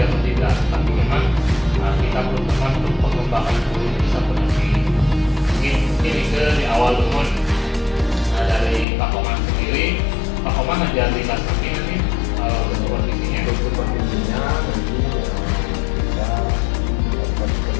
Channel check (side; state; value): right; drops out; at 8.8 s